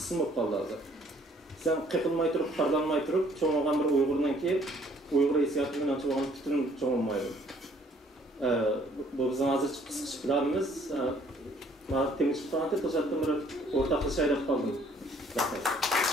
olup kaldı hazır. Sen qeqilmay turib, xarlanmay turib, çoğunluğun bir Uygurdan ki Uygur hissiyatından çoğunluğun bütün çoğunmaydı. Bu bizim hazır kısık planımız. Temiz tutanatı to'satdan bir o'rtaqlasha aylab qoldim.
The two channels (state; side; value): normal; both; correlation 0.60